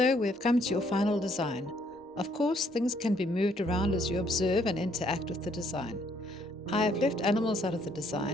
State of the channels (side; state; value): both; normal; correlation 0.67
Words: we've come to your final design. Of course, things can be moved around as you observe and interact with the design. I have left animals out of the